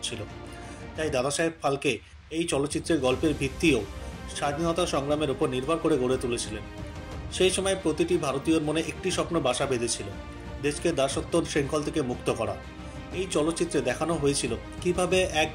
তাই দাদাসাহেব ফালকে এই চলচ্চিত্রের গল্পের ভিত্তিও স্বাধীনতা সংগ্রামের উপর নির্ভর করে গড়ে তুলেছিলেন। সেই সময় প্রতিটি ভারতীয়র মনে একটি স্বপ্ন বাসা বেঁধেছিল, দেশকে দাসত্ব শৃঙ্খল থেকে মুক্ত করা। এই চলচ্চিত্রে দেখানো হয়েছিল কিভাবে এক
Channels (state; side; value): identical; both; correlation 1.00